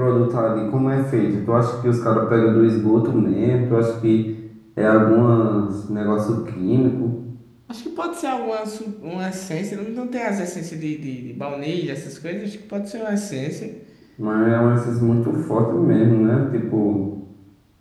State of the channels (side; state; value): both; identical; correlation 1.00